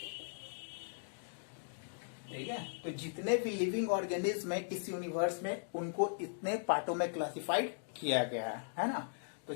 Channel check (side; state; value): right; silent; digital silence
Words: ठीक है, तो जितने भी लिविंग ऑर्गेनिज्म है इस यूनिवर्स में, उनको इतने पार्टों में क्लासिफाइड किया गया है ना। तो